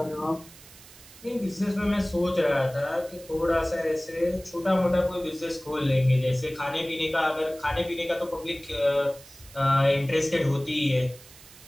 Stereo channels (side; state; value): right; noise; hiss, 21 dB below the sound